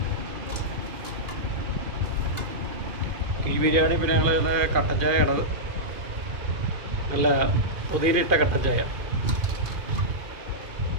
കിഴി ബിരിയാണി പിന്നെ ഞങ്ങൾ കട്ടൻ ചായയാണത്. നല്ല പുതിയിലിട്ട കട്ടൻ ചായ.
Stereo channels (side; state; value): left; late; 2.5 ms